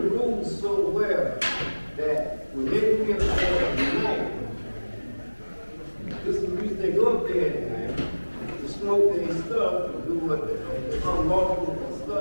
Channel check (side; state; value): both; inverted; correlation -1.00